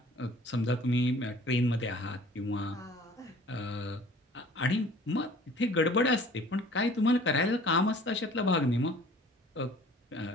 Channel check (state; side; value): normal; both; correlation 0.50